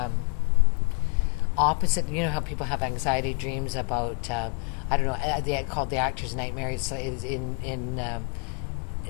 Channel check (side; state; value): right; quieter; 37.3 dB